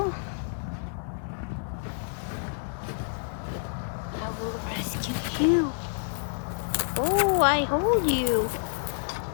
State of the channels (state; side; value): silent; right; 59 dB below the other